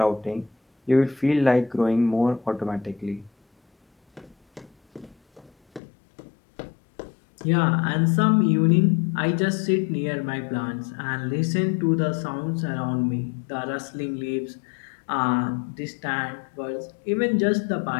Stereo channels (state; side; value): drops out; right; at 5.8 s